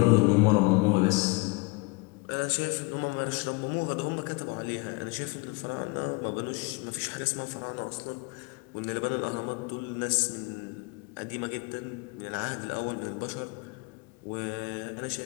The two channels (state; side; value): quieter; right; 28.0 dB